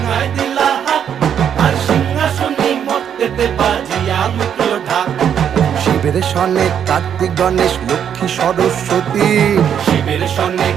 দিলা হাত, আর সিংহাসনে মর্তেতে বাজিয়া উঠল ঢাক। শিবের সনে কার্তিক গণেশ লক্ষ্মী সরস্বতী, শিবের সনে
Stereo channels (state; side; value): quieter; left; 8.6 dB